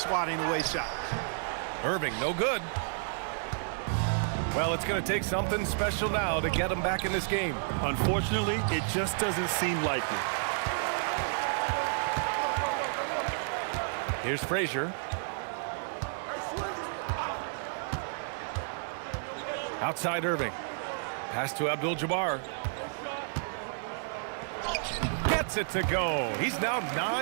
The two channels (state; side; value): silent; left; 57 dB below the other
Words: away shots. Irving, no good. Well, it's going to take something special now to get him back in this game. Unfortunately, it just doesn't seem likely. Here's Frazier. Outside Irving. Pass to Abdul-Jabbar. Gets it to go. He's now